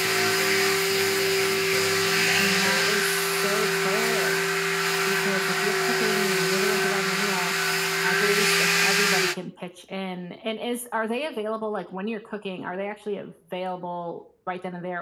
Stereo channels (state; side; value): identical; both; correlation 1.00